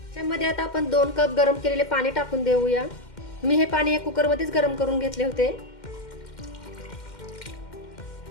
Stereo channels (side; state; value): right; late; 2.1 ms